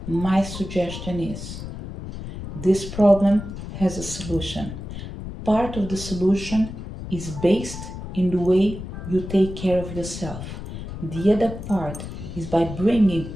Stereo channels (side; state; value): left; noise; rumble, 9 dB below the sound